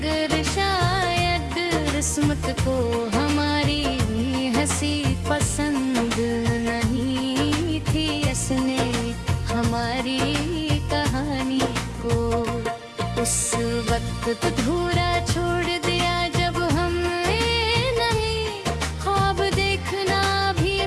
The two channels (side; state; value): both; identical; correlation 1.00